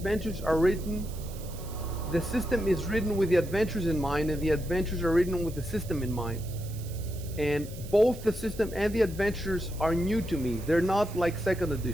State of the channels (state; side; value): noise; right; hiss, 17 dB below the sound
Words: are written, the system is written with the adventures in mind, and the adventures are written with the system in mind. And both the system and the adventures are new to me. They're not like second